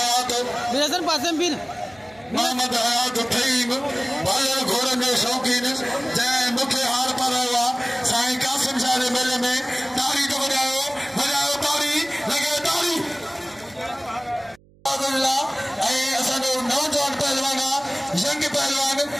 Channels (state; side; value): noise; right; hum, 29 dB below the sound